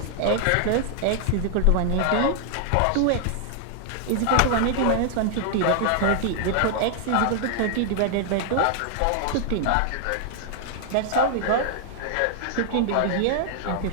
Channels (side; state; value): both; different; correlation 0.00